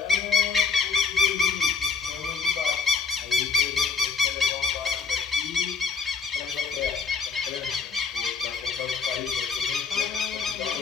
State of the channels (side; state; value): right; quieter; 5.2 dB